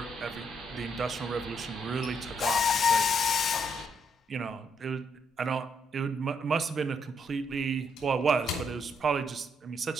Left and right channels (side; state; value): both; normal; correlation 0.74